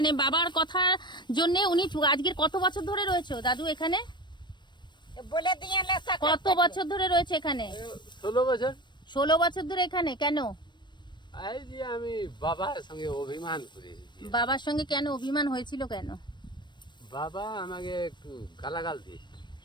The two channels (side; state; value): right; late; 0.22 ms